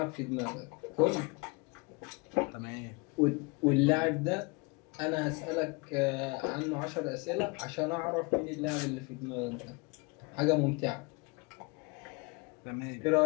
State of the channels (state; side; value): quieter; right; 28.3 dB